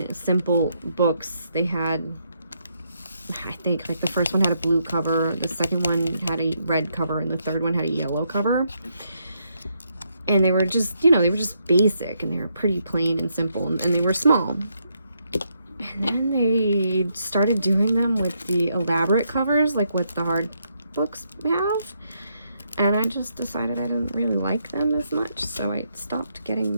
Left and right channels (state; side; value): inverted; both; correlation -0.77